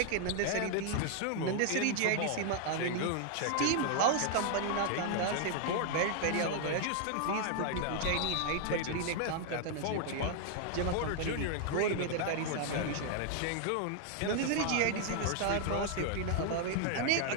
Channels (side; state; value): both; different; correlation 0.00